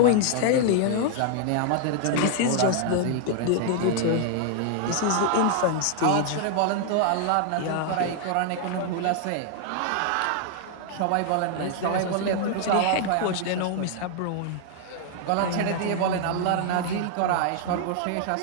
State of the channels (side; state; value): both; different; correlation 0.00